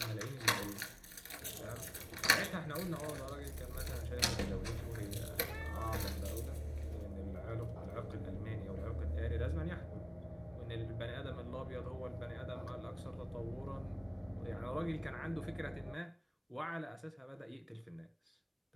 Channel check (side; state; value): both; identical; correlation 1.00